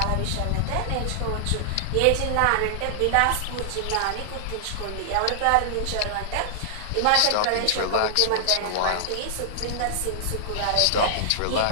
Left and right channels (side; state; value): both; different; correlation -0.01